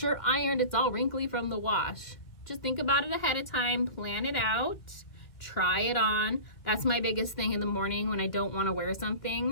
ironed, it's all wrinkly from the wash. Just think about it ahead of time, plan it out, try it on. That's my biggest thing in the morning when I don't want to wear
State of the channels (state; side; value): late; right; 2.3 ms